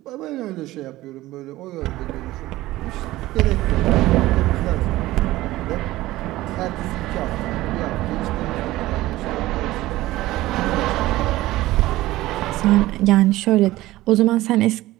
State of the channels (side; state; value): left; quieter; 17.1 dB